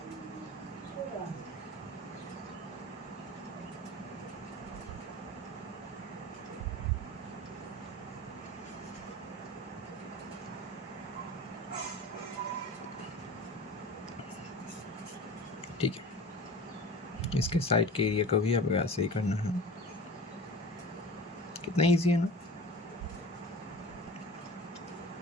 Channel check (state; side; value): normal; both; correlation 0.36